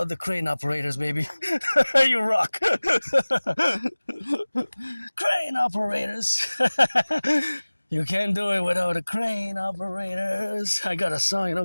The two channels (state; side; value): inverted; both; correlation -1.00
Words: the crane operators, baby. You rock. Crane operators. You can't do it without the crane operators. I got a